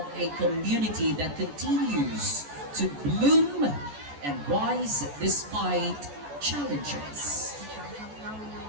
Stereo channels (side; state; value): left; late; 14 ms